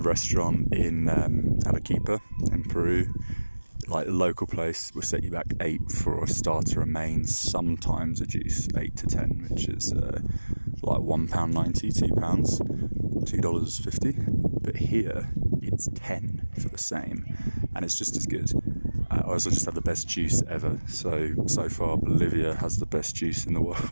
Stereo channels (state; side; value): inverted; both; correlation -1.00